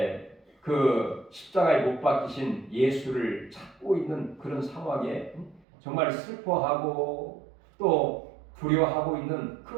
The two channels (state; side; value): drops out; left; at 5.7 s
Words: 그 십자가에 못 박히신 예수를 찾고 있는 그런 상황에 정말 슬퍼하고 또 두려워하고 있는